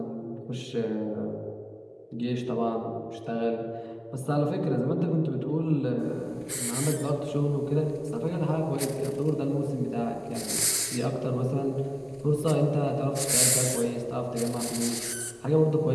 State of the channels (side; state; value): both; identical; correlation 1.00